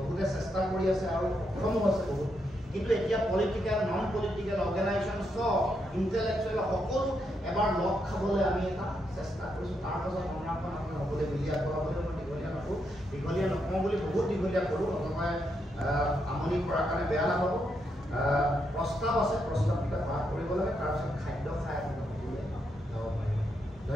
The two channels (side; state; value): both; normal; correlation 0.80